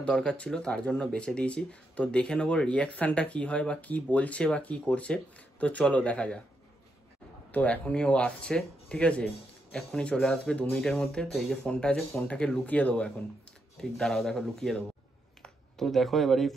দরকার ছিল তার জন্য বেচে দিয়েছি। তো দেখে নেবো রিয়াকশানটা কি হয় বা কি বলছে বা কি করছে। তো চলো দেখা যাক। তো এখনই ও আসছে, ঠিক আছে, এখনই চলে আসবে 2 মিনিটের মধ্যে। তো এই যে ফোনটা আছে, ফোনটাকে লুকিয়ে দেবো এখন। ঠিক দাঁড়াও, দেখো লুকিয়ে দেবো। তো দেখো এবার এই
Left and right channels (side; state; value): both; normal; correlation 0.81